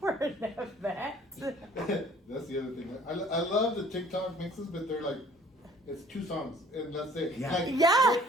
an event. That's the other thing. I love the TikTok mixes, but they're like, it's 2 songs and that's it. Yeah. Like, Yeah.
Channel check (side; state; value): both; normal; correlation 0.54